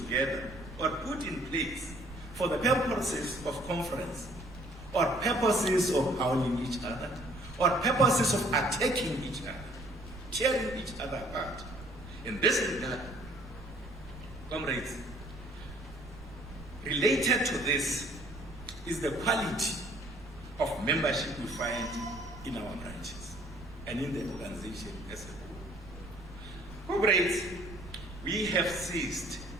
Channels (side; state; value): right; noise; rumble, 16 dB below the sound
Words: or put in place for the purposes of conference, or purposes of howling each other, or purposes of attacking each other, tearing each other apart. In this regard, comrades, related to this is the quality of membership we find in our branches and in the organization as a whole. Comrades, we have ceased